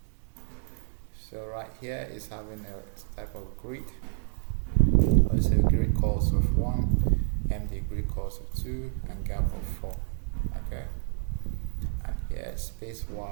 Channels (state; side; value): silent; left; digital silence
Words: so right here is having a type of grid. Also grid calls of 1, MD grid calls of 2, and gap of 4. Okay, and here space